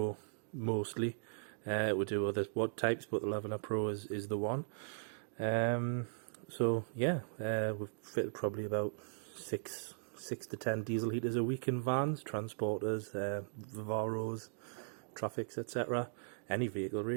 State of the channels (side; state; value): left; silent; digital silence